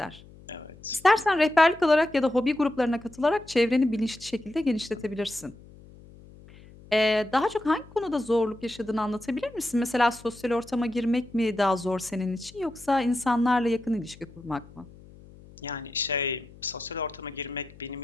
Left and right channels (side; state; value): left; noise; hum, 22 dB below the sound